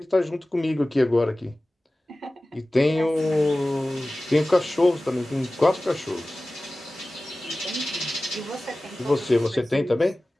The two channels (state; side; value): normal; both; correlation 0.97